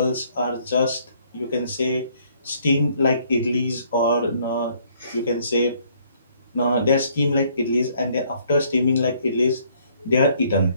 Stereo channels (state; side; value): inverted; both; correlation -0.65